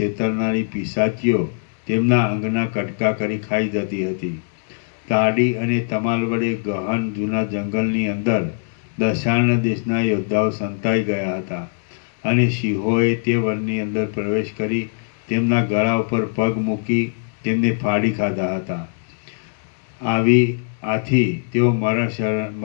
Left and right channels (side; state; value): right; silent; digital silence